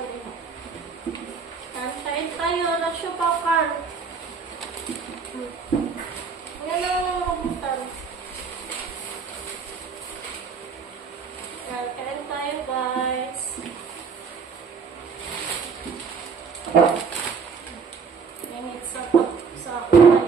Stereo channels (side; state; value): left; quieter; 5.6 dB